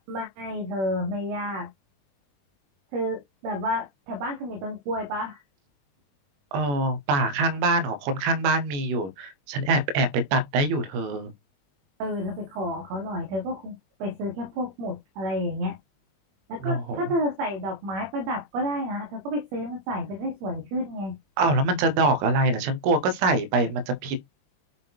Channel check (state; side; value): late; left; 21 ms